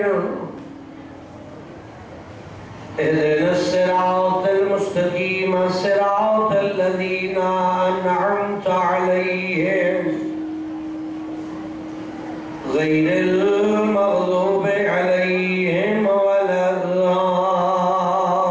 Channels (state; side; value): identical; both; correlation 1.00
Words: اهدنا الصراط المستقيم صراط الذين أنعمت عليهم غير المغضوب عليهم ولا